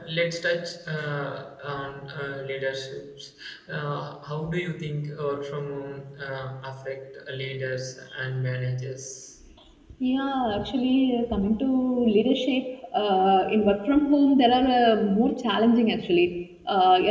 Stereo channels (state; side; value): identical; both; correlation 1.00